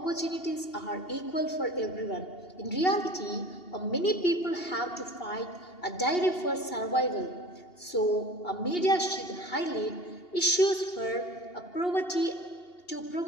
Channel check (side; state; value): right; late; 2.8 ms